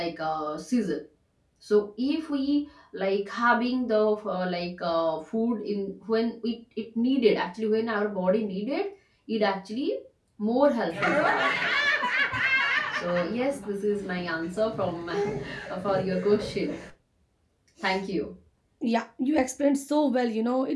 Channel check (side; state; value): both; identical; correlation 1.00